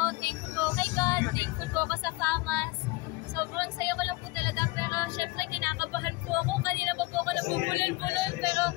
Thankful ko kay God. Thankful ko ako sa FAMAS. Sobrang saya ko lang po talaga. Pero syempre, kinakabahan po ako. Kanina pa po ako nabubulol-bulol. Pero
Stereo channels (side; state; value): right; quieter; 22.8 dB